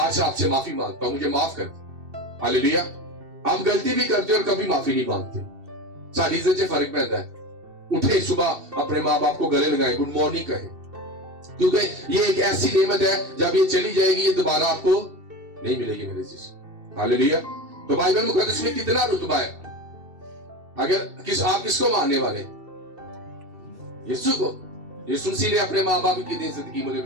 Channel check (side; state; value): left; late; 2.7 ms